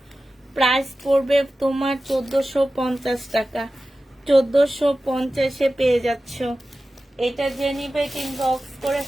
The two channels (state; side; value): normal; both; correlation 0.94